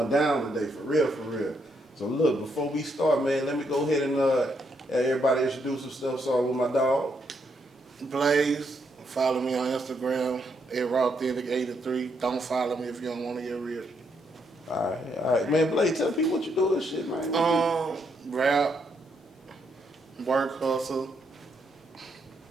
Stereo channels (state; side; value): normal; both; correlation 0.76